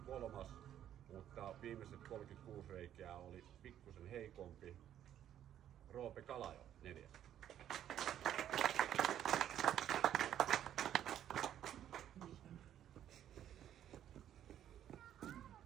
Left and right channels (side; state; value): left; quieter; 10.8 dB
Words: 3, mutta viimeiset 36 reikää oli pikkusen heikompi. Roope Kalajo, 4.